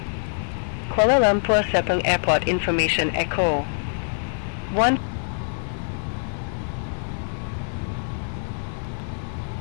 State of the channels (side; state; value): right; silent; digital silence